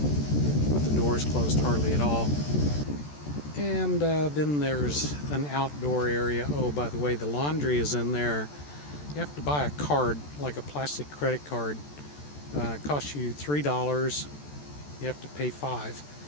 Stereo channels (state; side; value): late; right; 14 ms